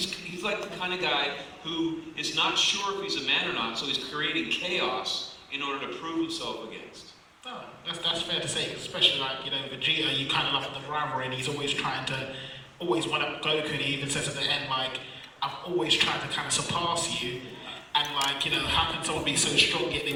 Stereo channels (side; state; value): both; identical; correlation 1.00